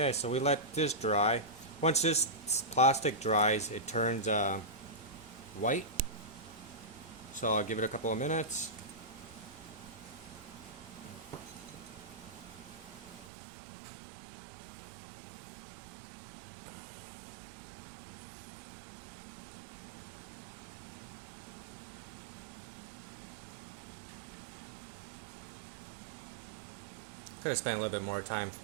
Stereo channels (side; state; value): left; drops out; at 13.2 s